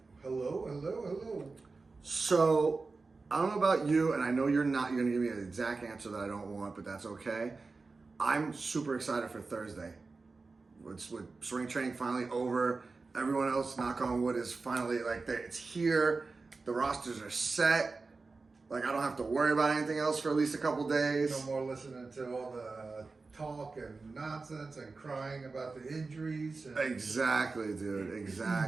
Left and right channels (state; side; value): quieter; left; 4.0 dB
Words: Hello. So, I don't know about you, and I know you're going to give me an exact answer that I don't want, but that's okay. I'm super excited for Thursday. With spring training finally over, everyone else, knock on wood, is finally, it's here. The rosters are set. I don't have to worry about anything else for at least a couple days. No more listening to all the talk and nonsense and crying about the injuries. Exactly, dude.